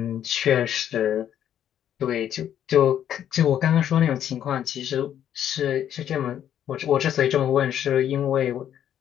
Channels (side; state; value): right; quieter; 10.2 dB